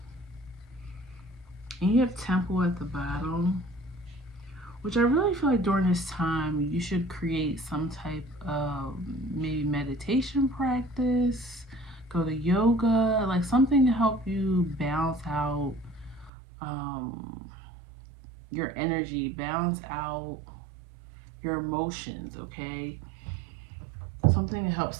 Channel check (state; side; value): drops out; left; at 16.3 s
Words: And you have Temple at the bottom, which I really feel like during this time you should create some type of maybe meditation practice, go to yoga, like something to help you balance out your energy, balance out your emotions, okay? Something to help